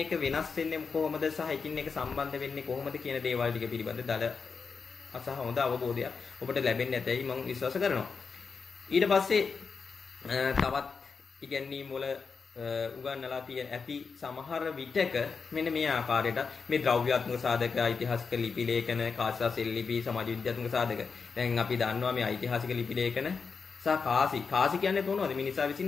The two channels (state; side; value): quieter; right; 5.2 dB